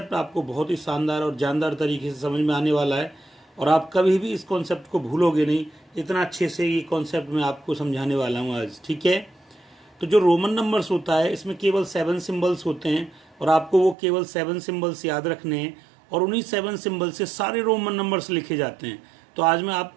आपको बहुत ही शानदार और जानदार तरीके से समझ में आने वाला है और आप कभी भी इस कॉन्सेप्ट को भूलोगे नहीं। इतना अच्छे से ये कॉन्सेप्ट मैं आपको समझाने वाला हूँ आज, ठीक है। तो जो रोमन नंबर्स होता है इसमें केवल 7 सिंबल्स होते हैं और आपको वो केवल 7 सिंबल्स याद रखने हैं और उन्हीं 7 सिंबल से सारे रोमन नंबर्स लिखे जाते हैं। तो आज मैं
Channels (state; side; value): drops out; left; at 14.0 s